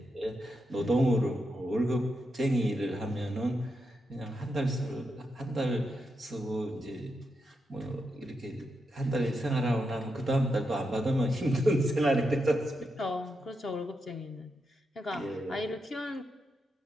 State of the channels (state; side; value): normal; both; correlation 0.85